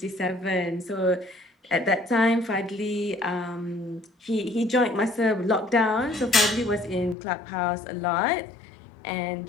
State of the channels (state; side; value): drops out; right; at 7.2 s